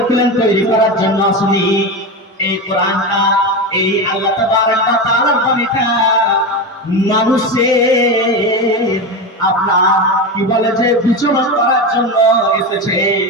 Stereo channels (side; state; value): both; normal; correlation 0.19